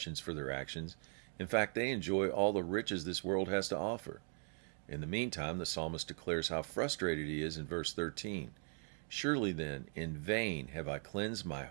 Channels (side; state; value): left; silent; 51 dB below the other